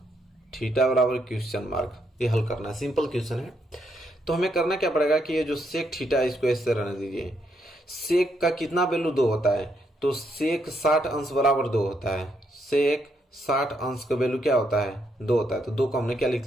थीटा बराबर क्वेश्चन मार्क। ये हल करना है, सिंपल क्वेश्चन है। तो हमें करना क्या पड़ेगा कि ये जो सेक थीटा है इसको ऐसे रहने दीजिए। सेक का कितना वैल्यू 2 होता है, तो सेक 60 अंश बराबर 2 होता है। सेक 60 अंश का वैल्यू क्या होता है, 2 होता है। तो 2 को हमने क्या लिख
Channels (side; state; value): both; normal; correlation 0.76